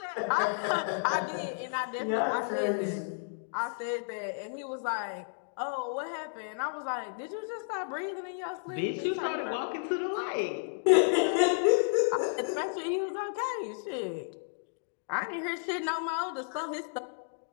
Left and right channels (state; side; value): silent; right; digital silence